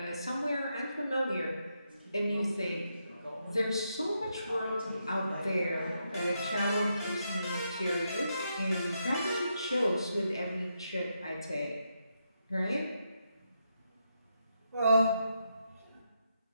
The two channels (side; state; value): both; inverted; correlation -0.82